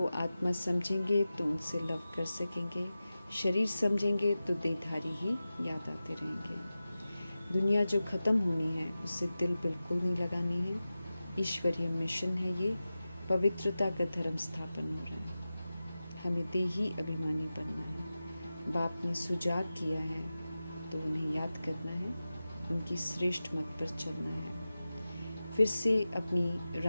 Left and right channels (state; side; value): inverted; both; correlation -0.95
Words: आत्मा समझेंगे तो उनसे लव कर सकेंगे। शरीर समझेंगे तो देहधारी ही याद आते रहेंगे। दुनिया जो ख़त्म होनी है उससे दिल बिल्कुल नहीं लगानी है। ईश्वरीय मिशन है ये। पवित्रता का धर्म स्थापन हो रहा है। हमें देही अभिमानी बनना है। बाप ने सुजाग किया है तो उन्हें याद करना है, उनकी श्रेष्ठ मत पर चलना है। फिर से अपनी